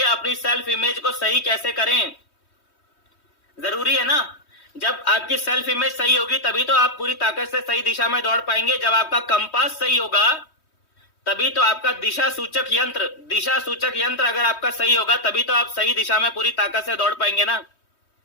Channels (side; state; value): right; late; 3.2 ms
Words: अपनी सेल्फ इमेज को सही कैसे करें, जरूरी है ना। जब आपकी सेल्फ इमेज सही होगी तभी तो आप पूरी ताकत से सही दिशा में दौड़ पाएंगे। जब आपका कंपास सही होगा तभी तो आपका दिशा सूचक यंत्र अगर आपका सही होगा तभी तो आप सही दिशा में पूरी ताकत से दौड़ पाएंगे ना।